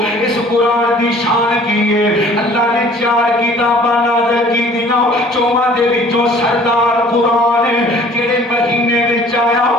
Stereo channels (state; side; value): normal; both; correlation 0.52